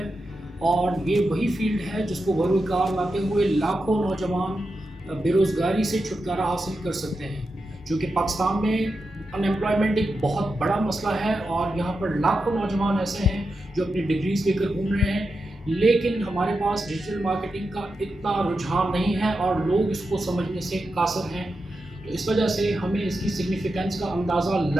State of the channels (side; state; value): both; normal; correlation 0.89